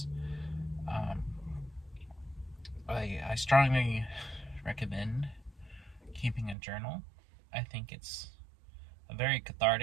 I strongly recommend keeping a journal. I think it's a very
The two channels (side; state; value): left; drops out; at 6.6 s